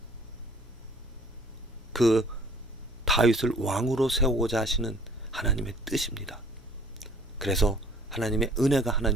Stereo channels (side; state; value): both; normal; correlation 0.53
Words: 그 다윗을 왕으로 세우고자 하시는 하나님의 뜻입니다. 그래서 하나님의 은혜가,